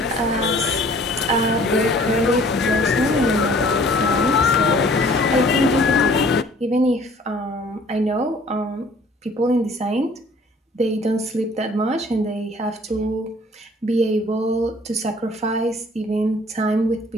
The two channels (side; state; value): both; normal; correlation 0.54